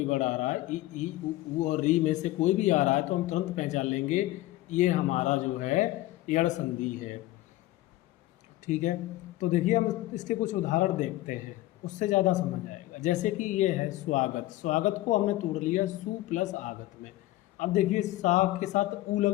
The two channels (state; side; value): quieter; right; 16.9 dB